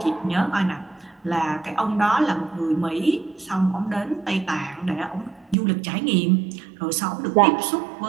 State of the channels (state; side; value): drops out; left; at 5.6 s